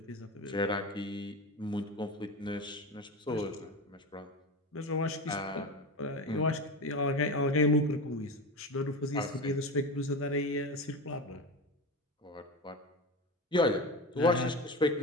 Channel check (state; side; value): normal; both; correlation 0.24